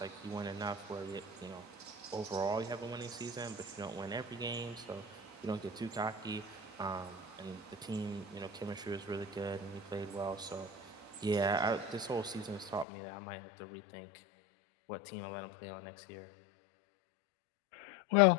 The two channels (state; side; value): drops out; right; at 12.9 s